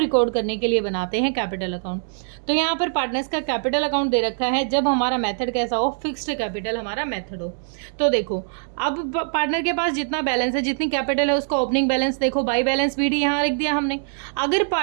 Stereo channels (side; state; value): left; silent; 63 dB below the other